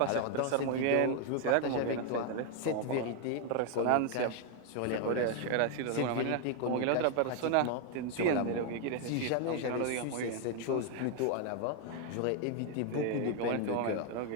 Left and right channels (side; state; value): both; different; correlation 0.00